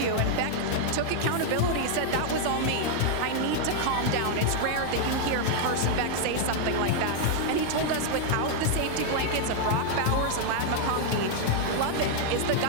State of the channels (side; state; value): both; different; correlation 0.00